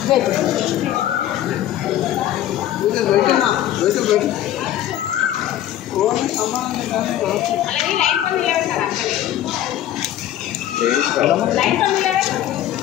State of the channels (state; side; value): quieter; right; 12.3 dB